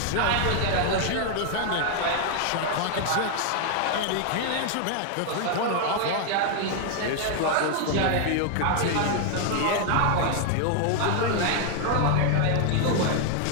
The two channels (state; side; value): different; both; correlation 0.00